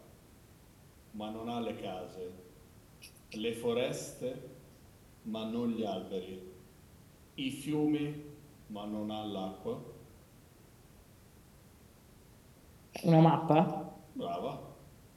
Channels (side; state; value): both; identical; correlation 1.00